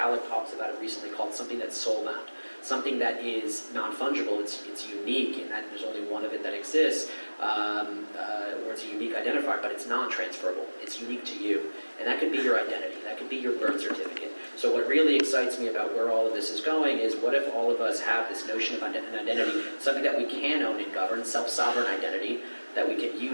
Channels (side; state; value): both; inverted; correlation -1.00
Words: talks about it recently, called something that's soul-bound. Something that is non-fungible, it's unique in that there's only one of it that exists, or it's a unique identifier, but it's non-transferable. It's unique to you. And that could be your identity. That could be your birth certificate. So what really excites me about where all of this is going is what if all of us have this notion of an identity, something that we can own and govern, self-sovereign identity, that we can